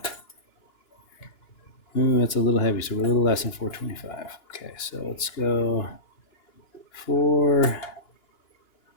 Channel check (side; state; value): right; late; 2.9 ms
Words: Ooh, that's a little heavy, so we're a little less than 425. Okay, so let's go 4